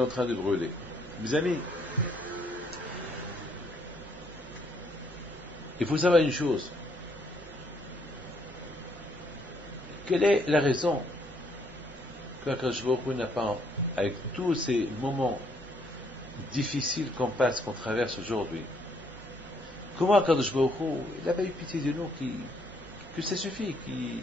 en train de brûler. Mes amis, il faut savoir une chose. Quelle est la raison qu'Akadosh Baruch Hu n'a pas, avec tous ces moments difficiles qu'on passe, qu'on traverse aujourd'hui, comment Akadosh Baruch Hu, il n'a pas eu pitié de nous, que ça suffit,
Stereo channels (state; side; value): normal; both; correlation 0.69